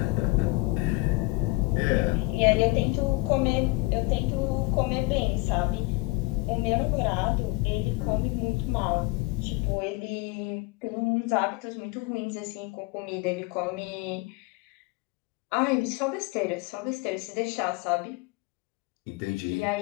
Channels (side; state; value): right; quieter; 23.5 dB